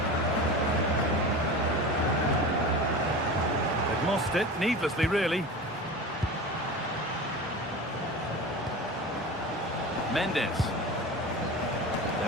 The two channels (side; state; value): both; normal; correlation 0.31